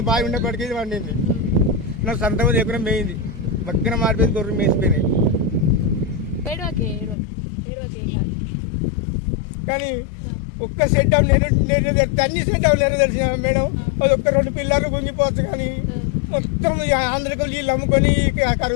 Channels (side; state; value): right; drops out; at 7.2 s